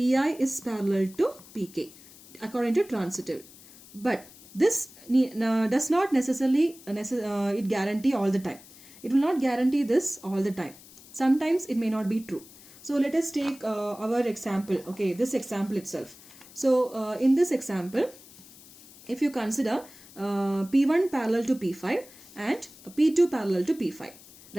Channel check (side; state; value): left; noise; hiss, 21 dB below the sound